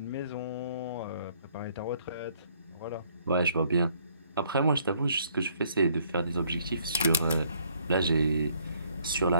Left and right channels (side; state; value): both; inverted; correlation -0.64